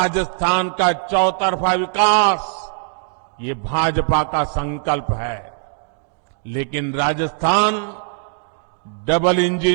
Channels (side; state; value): left; silent; digital silence